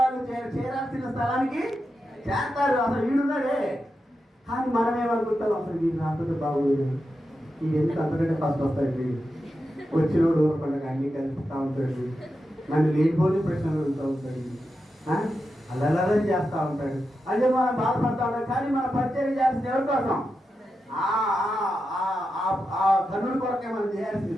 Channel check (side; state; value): both; normal; correlation 0.89